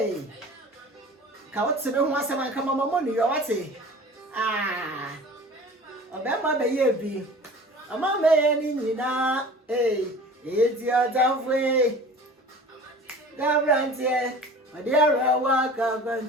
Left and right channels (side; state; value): both; normal; correlation 0.42